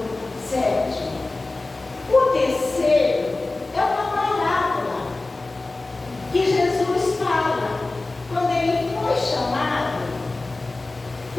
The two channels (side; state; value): right; quieter; 3.2 dB